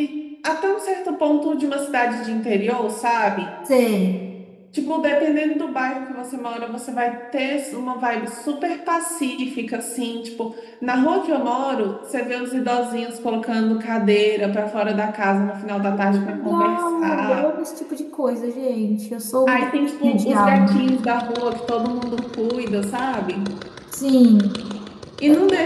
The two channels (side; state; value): both; identical; correlation 1.00